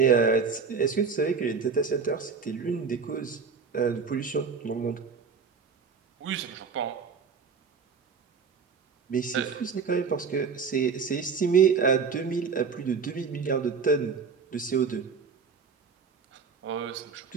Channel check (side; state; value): left; quieter; 5.6 dB